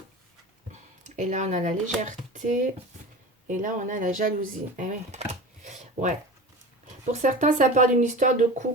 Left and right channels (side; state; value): both; normal; correlation 0.33